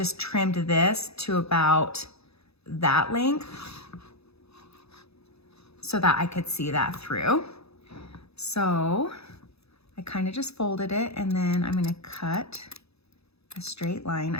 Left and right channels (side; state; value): right; late; 0.79 ms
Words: trimmed this to about that length so that I could see that through. So I kind of just folded it, and then I'm gonna cut a straight line.